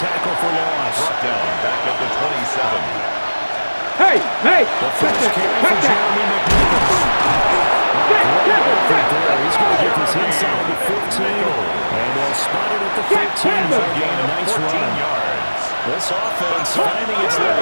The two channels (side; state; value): both; inverted; correlation -1.00